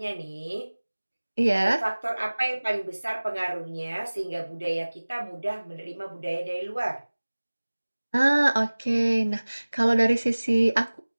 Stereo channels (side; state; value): both; inverted; correlation -1.00